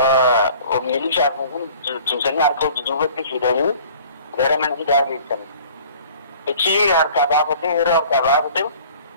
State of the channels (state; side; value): inverted; both; correlation -0.48